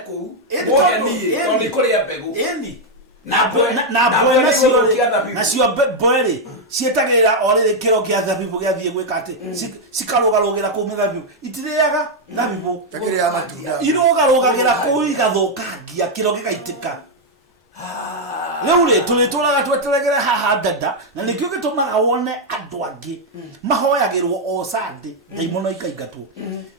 mugeni tondu kuria mbegu na cio mboeri cietagira orire kiro kia thabibu giathie gwika ati cikarugarugira ku mithabibu itiriaga thabibu takiria matunda irugarugagira ku igathukangia kiro gigaitika Leure tulituraga tweteregere haha dada na nikyo gitumaga wone andu angi mahoyagirwo o Sunday daimono ikaingatwo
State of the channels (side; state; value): both; normal; correlation 0.00